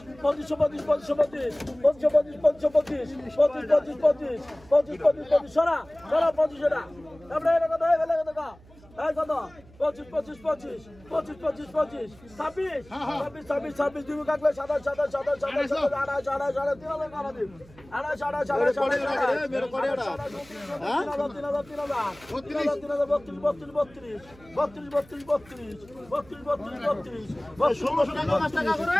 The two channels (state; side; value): noise; right; hum, 24 dB below the sound